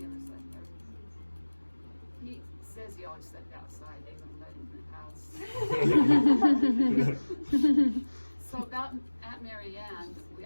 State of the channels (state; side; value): inverted; both; correlation -1.00